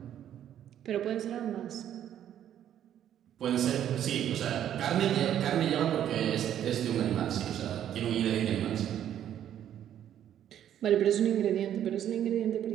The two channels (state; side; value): quieter; left; 10.5 dB